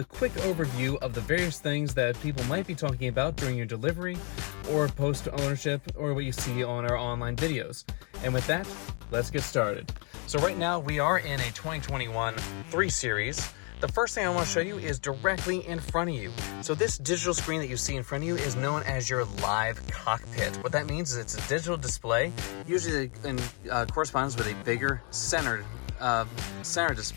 quick overview of the various things that people might be talking about during your delivery or post-ownership or what you see on our online videos. And with that, let's get started. So right now we are in a 2021 3 Series. The first thing I want to show you is directly in front of you. So this digital screen that you see in front of you is known as your live cockpit. What that means is it's a digital display, usually corresponds with a bigger center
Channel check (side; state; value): right; quieter; 36.3 dB